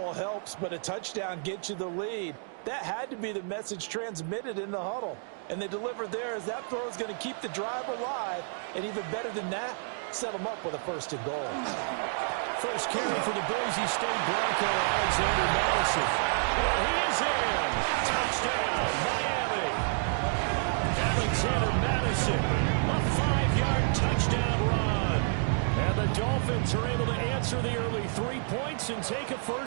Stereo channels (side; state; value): left; silent; digital silence